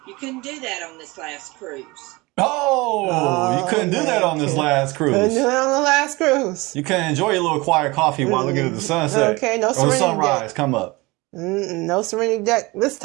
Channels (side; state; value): left; quieter; 23.3 dB